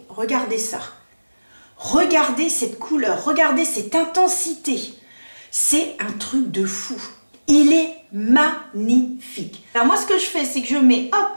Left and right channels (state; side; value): inverted; both; correlation -1.00